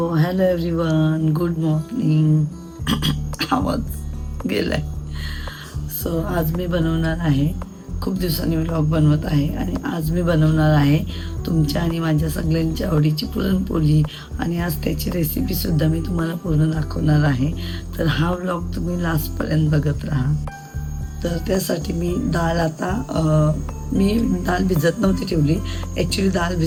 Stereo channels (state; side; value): identical; both; correlation 1.00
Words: hello everyone, good morning. आवाज गेलाय. सो आज मी बनवणार आहे, खूप दिवसांनी व्लॉग बनवत आहे आणि आज मी बनवणार आहे तुमच्या आणि माझ्या सगळ्यांच्या आवडीची पुरणपोळी आणि आज त्याची रेसिपीसुद्धा मी तुम्हाला पूर्ण दाखवणार आहे. तर हा व्लॉग तुम्ही लास्टपर्यंत बघत राहा. तर त्यासाठी मी डाळ मी डाळ भिजत नव्हती ठेवली. ॲक्च्युली डाळ